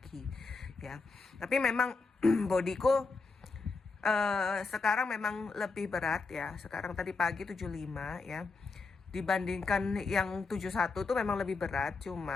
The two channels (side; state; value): right; quieter; 4.2 dB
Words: ya. Tapi memang bodiku sekarang memang lebih berat ya. Sekarang tadi pagi 75 ya. Dibandingkan yang 71 tuh memang lebih berat,